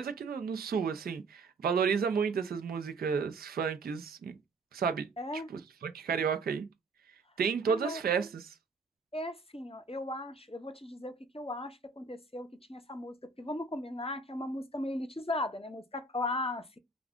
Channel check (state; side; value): quieter; left; 3.9 dB